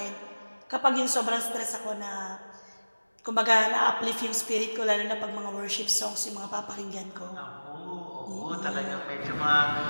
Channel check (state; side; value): inverted; both; correlation -1.00